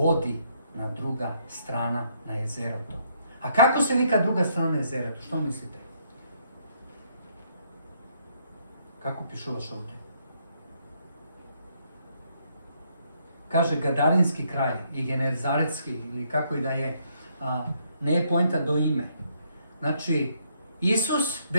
na druga strana na jezero to. A kako se vika druga strana na jezero to? Što mislite? Kako pišuvaš ovdje? Kaže Gadarinski kraj i Genezaretski, ili kako i da je, ne je poenta do ime. Znači, Isus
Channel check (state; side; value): inverted; both; correlation -0.71